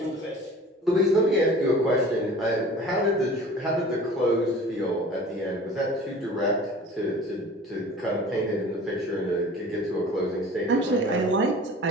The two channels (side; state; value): both; normal; correlation 0.43